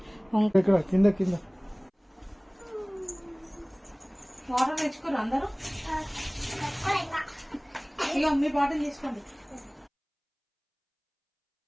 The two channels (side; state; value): both; identical; correlation 1.00